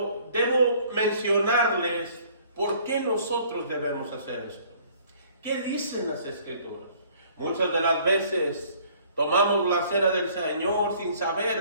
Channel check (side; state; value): both; inverted; correlation -0.57